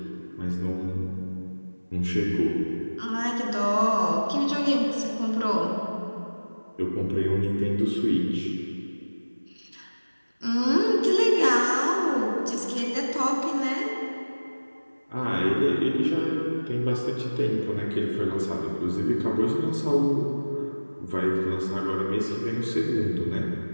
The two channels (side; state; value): both; inverted; correlation -1.00